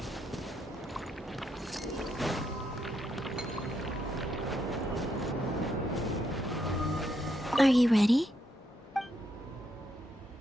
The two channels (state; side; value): normal; both; correlation 0.78